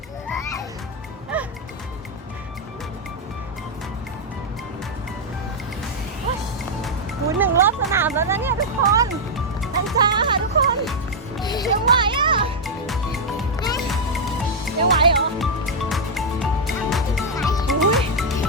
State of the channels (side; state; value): both; normal; correlation -0.02